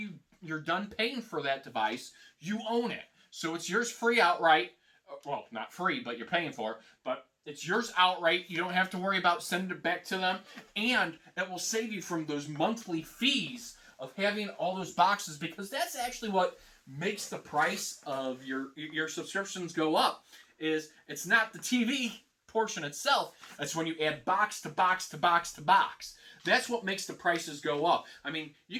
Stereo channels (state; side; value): identical; both; correlation 1.00